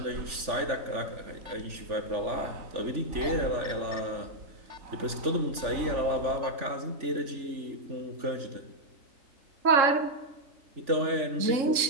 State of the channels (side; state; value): left; late; 3.4 ms